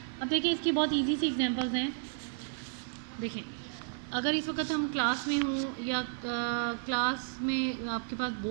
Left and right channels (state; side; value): silent; left; 56 dB below the other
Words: अब देखिए इसकी बहुत इजी सी एग्जांपल्स हैं। देखें अगर इस वक्त हम क्लास में हों या क्लास में आपके पास